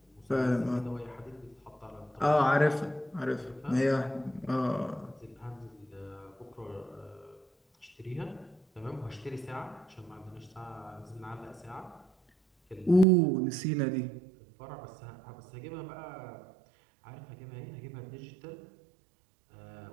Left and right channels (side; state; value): left; drops out; at 13.1 s